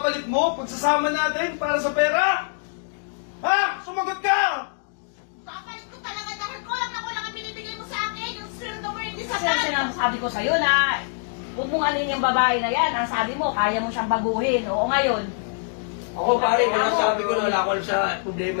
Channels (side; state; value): right; silent; digital silence